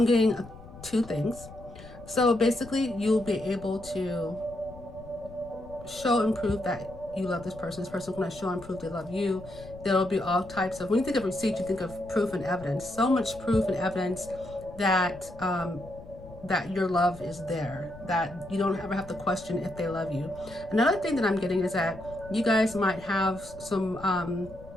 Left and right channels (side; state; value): left; noise; rumble, 17 dB below the sound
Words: getting 2 things. So basically you'll be able to show and prove that you love this person's going to show and prove they love you. There'll be all types of, when you think of receipts, you think of proof and evidence. So much proof and evidence that that your love is there, that you don't ever have to question if they love you. Another thing that I'm getting is that you guys might have some